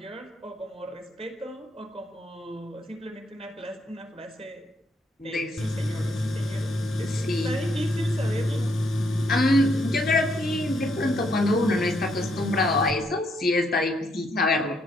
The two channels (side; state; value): both; normal; correlation 0.74